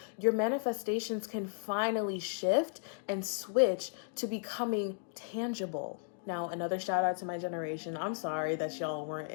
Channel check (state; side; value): silent; right; digital silence